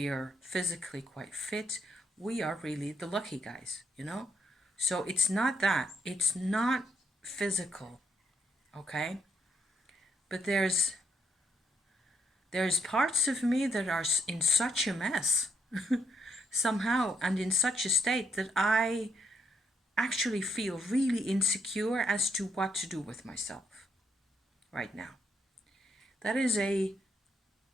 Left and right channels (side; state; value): both; normal; correlation 0.74